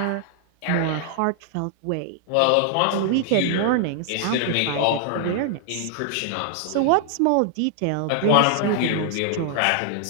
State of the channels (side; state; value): both; different; correlation 0.00